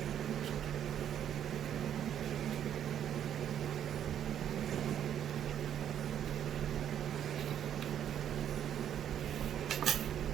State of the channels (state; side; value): quieter; left; 9.8 dB